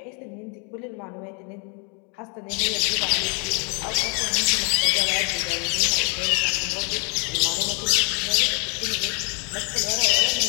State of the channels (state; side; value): quieter; right; 36.4 dB